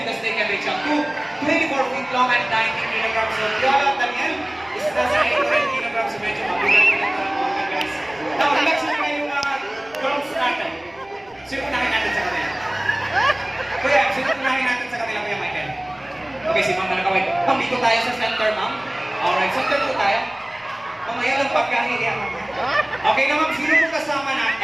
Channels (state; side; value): noise; right; rumble, 30 dB below the sound